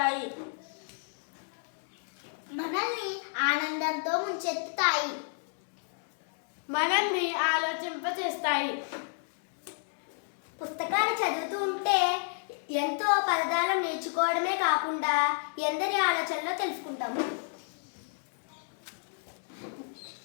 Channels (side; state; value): right; silent; digital silence